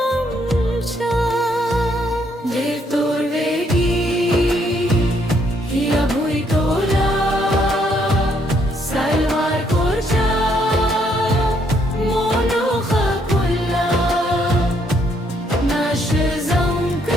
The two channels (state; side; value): normal; both; correlation 0.71